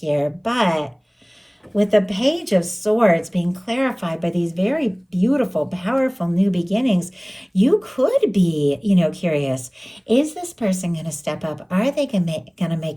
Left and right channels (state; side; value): identical; both; correlation 1.00